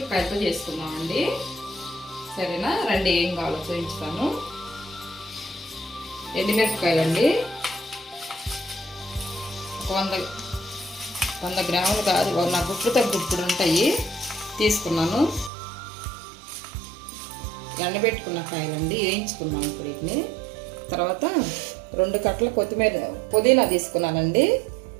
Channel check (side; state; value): left; drops out; at 15.5 s